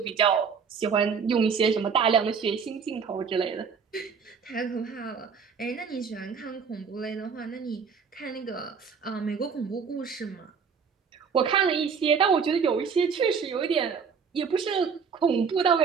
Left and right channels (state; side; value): quieter; left; 6.1 dB